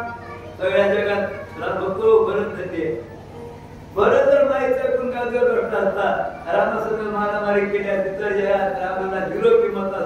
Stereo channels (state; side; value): identical; both; correlation 1.00